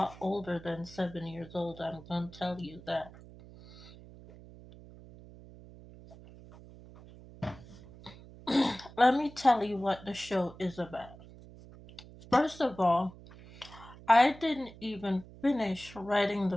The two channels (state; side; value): noise; right; hum, 19 dB below the sound